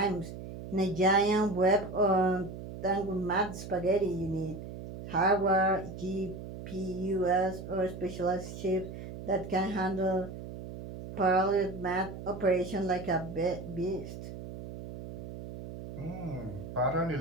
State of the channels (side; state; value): right; noise; hum, 10 dB below the sound